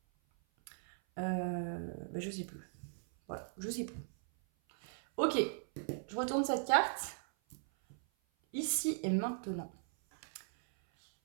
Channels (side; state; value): left; silent; 52 dB below the other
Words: bah, je sais plus. Voilà, je sais plus. Ok, je retourne cette carte. Ici et maintenant.